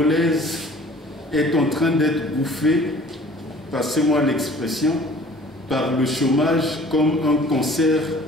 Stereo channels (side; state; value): both; normal; correlation 0.50